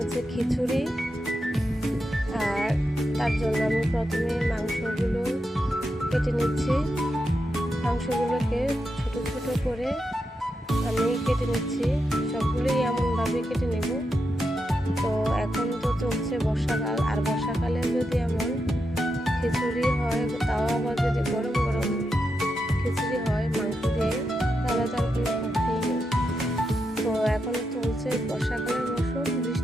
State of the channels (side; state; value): both; normal; correlation 0.86